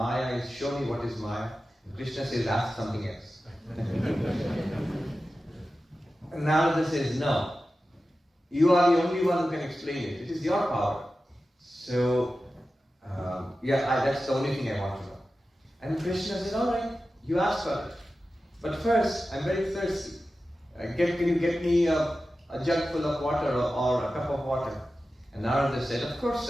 is? Show me what is Maya. And Krishna says, ask something else. And Narada says, no. You are the only one who can explain it. It is your power. So, that's the only thing I want to know. And Krishna said, all right, you ask for it. But first, I'm very thirsty. Can you get me a jug full of water or a cup of water? And Narada said, of course,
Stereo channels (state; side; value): normal; both; correlation 0.94